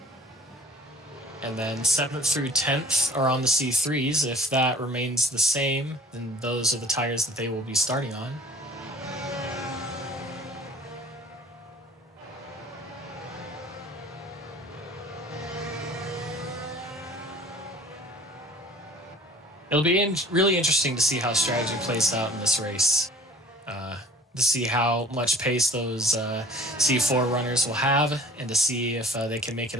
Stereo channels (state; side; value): normal; both; correlation 0.48